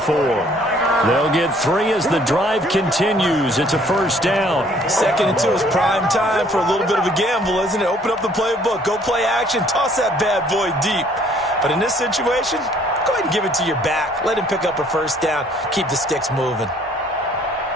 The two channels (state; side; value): normal; both; correlation 0.60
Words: They'll get 3 as the drive continues. It's a 1st down. 2nd and 2 is prime time for a little bit of a gamble, isn't it? Open up the playbook, go play action, toss that bad boy deep. But in this situation, go ahead and give it to your back. Let him pick up a 1st down. Keep the sticks moving.